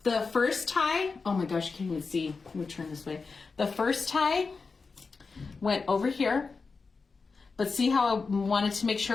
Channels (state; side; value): quieter; right; 4.5 dB